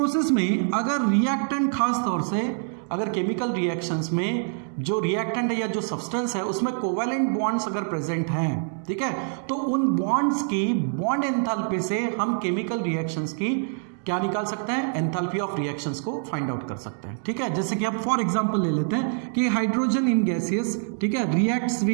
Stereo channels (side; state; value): left; silent; digital silence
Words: में अगर रिएक्टेंट, खास तौर से अगर केमिकल रिएक्शंस में जो रिएक्टेंट है या जो सब्सटेंस है उसमें कोवैलेंट बॉन्ड्स अगर प्रेजेंट हैं, ठीक है, तो उन बॉन्ड्स की बॉन्ड एंथैल्पी से हम केमिकल रिएक्शंस की क्या निकाल सकते हैं, एंथैल्पी ऑफ रिएक्शंस को फाइंड आउट कर सकते हैं। ठीक है, जैसे कि आप फॉर एग्जांपल ले लेते हैं कि हाइड्रोजन इन गैसियस, ठीक है, reacts